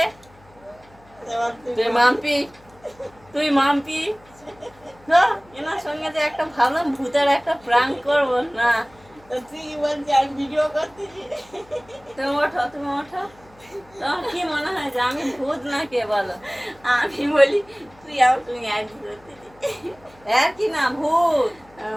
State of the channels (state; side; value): noise; left; hum, 27 dB below the sound